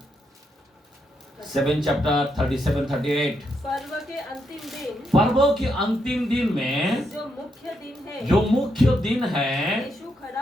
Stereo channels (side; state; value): both; normal; correlation 0.80